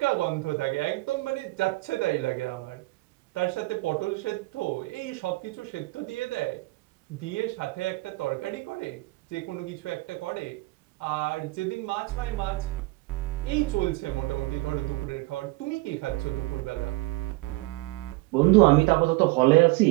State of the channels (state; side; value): quieter; left; 22.5 dB